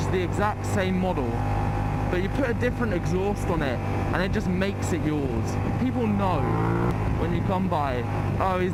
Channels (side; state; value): both; identical; correlation 1.00